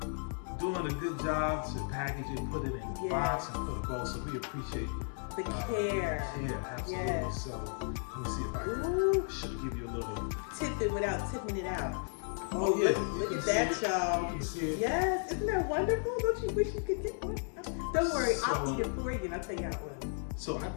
doing a good job to package it, put it in a box and put a bow. So we appreciate the care. Yeah, absolutely. Yes. So let me see if I can should give you a little tip it without tipping it out. Oh yeah, look at that, y'all. You can see it. Yes, isn't that wonderful? Don't you wish you could get one? Don't worry, I'll eat it for you and I'll tell you how it was. So I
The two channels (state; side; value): silent; right; 55 dB below the other